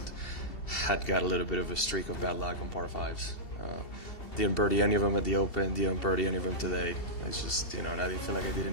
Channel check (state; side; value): late; right; 2.7 ms